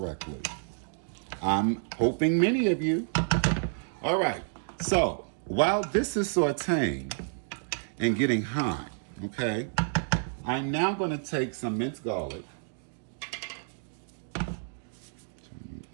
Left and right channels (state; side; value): silent; left; digital silence